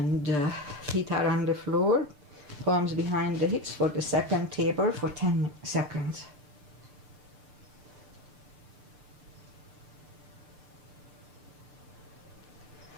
feet are on the floor, palms behind the hips for the second table for 10 seconds.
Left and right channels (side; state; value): left; late; 6.7 ms